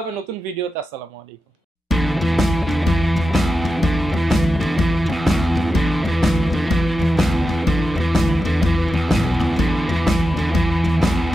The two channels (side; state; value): both; normal; correlation 0.90